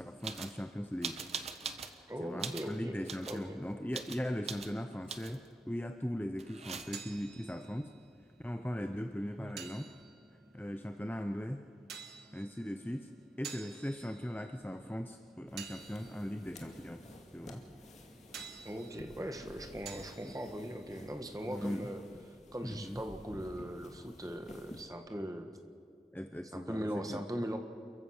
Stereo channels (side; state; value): both; normal; correlation 0.89